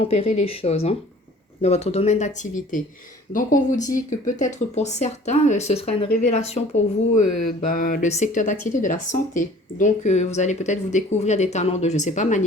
les choses. dans votre domaine d'activité. Donc, on vous dit que peut-être pour certains, ce sera une révélation pour vous, le secteur d'activité de la santé. Donc, vous allez peut-être vous découvrir des talents de, je ne sais pas,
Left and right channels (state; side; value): normal; both; correlation 0.49